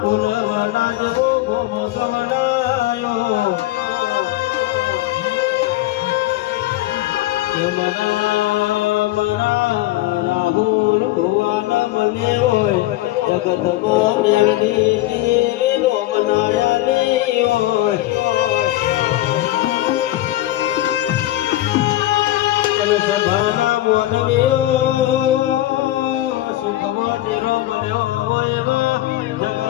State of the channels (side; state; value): right; quieter; 15.8 dB